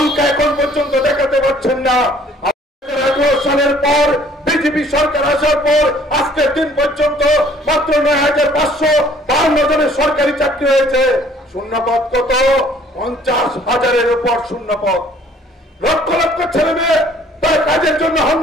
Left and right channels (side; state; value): both; normal; correlation 0.57